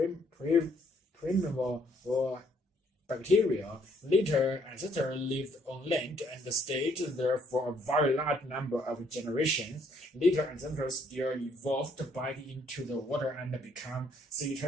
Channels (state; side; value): normal; both; correlation 0.67